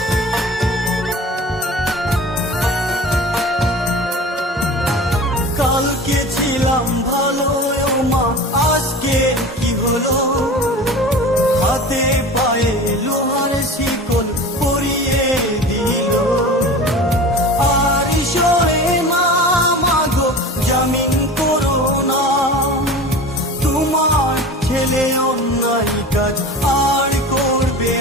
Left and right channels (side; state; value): both; normal; correlation 0.35